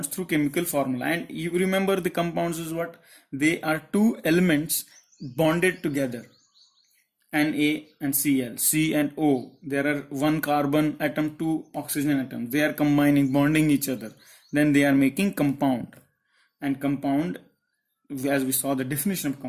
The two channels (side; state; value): both; identical; correlation 1.00